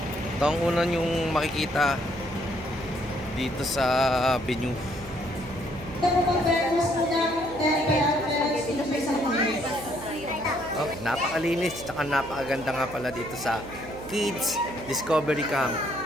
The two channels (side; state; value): right; noise; hum, 16 dB below the sound